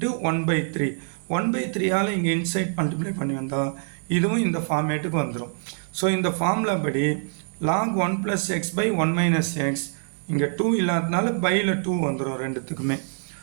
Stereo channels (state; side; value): silent; left; 62 dB below the other